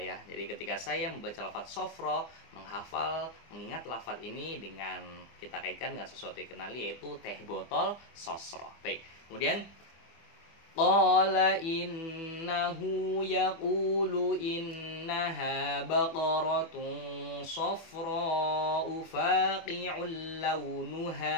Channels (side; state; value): right; late; 24 ms